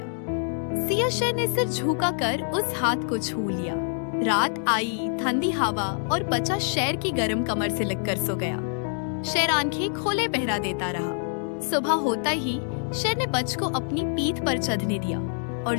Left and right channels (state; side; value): silent; right; digital silence